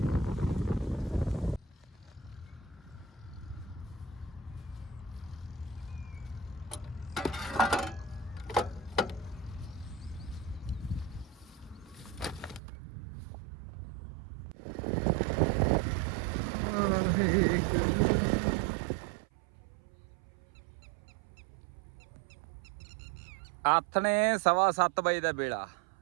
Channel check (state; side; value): drops out; left; at 12.6 s